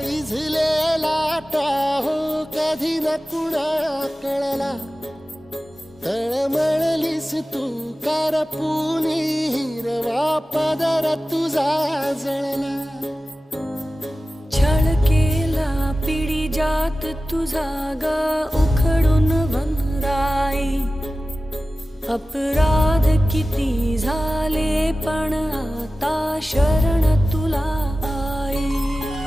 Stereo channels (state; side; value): normal; both; correlation 0.95